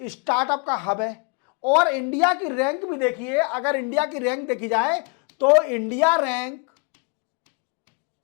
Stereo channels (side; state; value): right; quieter; 33.1 dB